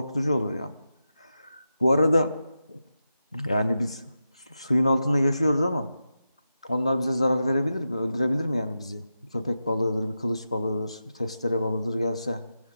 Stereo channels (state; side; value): inverted; both; correlation -0.90